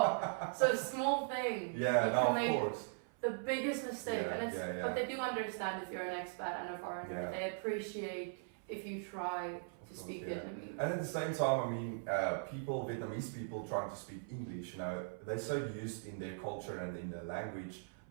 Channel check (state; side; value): silent; left; 51 dB below the other